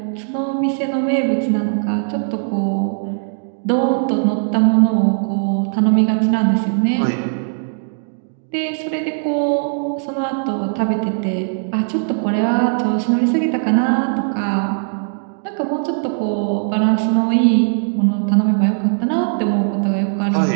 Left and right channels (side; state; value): left; silent; digital silence